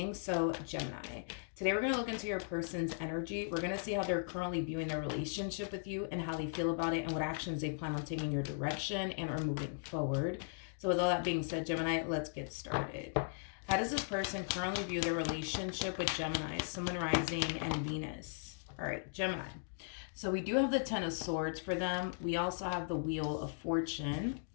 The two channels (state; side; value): silent; right; digital silence